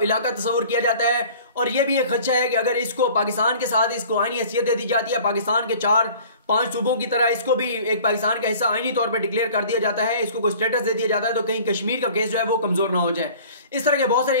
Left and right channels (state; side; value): inverted; both; correlation -0.47